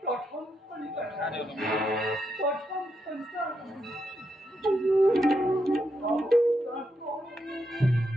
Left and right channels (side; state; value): both; normal; correlation 0.82